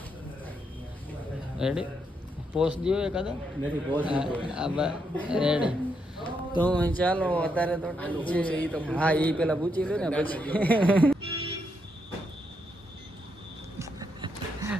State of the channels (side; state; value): both; normal; correlation 0.79